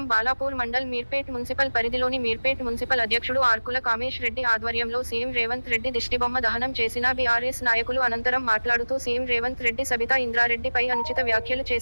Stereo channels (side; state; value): both; inverted; correlation -1.00